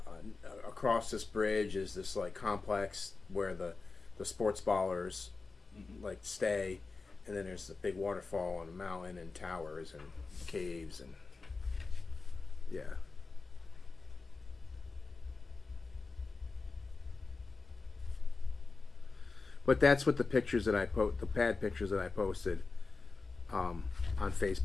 across this bridge is this like complex where the sports ballers like stay, and then there's a big waterfall and a mountain and towers and caves and yeah. But that's what the pictures that the pad pictures that I posted on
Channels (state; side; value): quieter; right; 4.1 dB